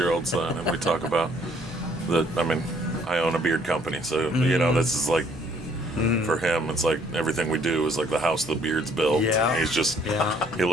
son, and we talk about I mean, I own a beard company, so this is like. For him, it's like everything we do is like the house the beard's built. Yeah. He's just, Yeah. he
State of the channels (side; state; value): both; normal; correlation 0.63